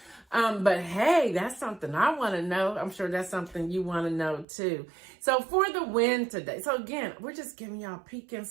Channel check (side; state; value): left; drops out; at 4.5 s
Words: But hey, that's something I want to know. I'm sure that's something you want to know too. So for the win today. So again, we're just giving y'all a peek